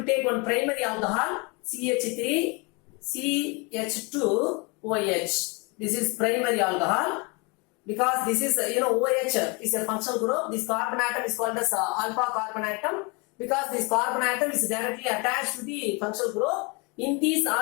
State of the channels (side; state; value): right; quieter; 30.0 dB